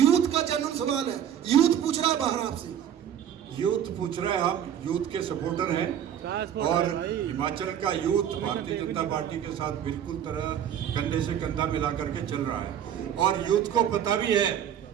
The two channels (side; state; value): left; quieter; 9.6 dB